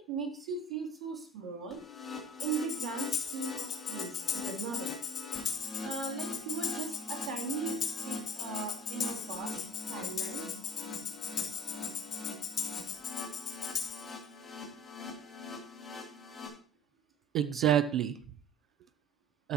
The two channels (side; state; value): both; normal; correlation 0.44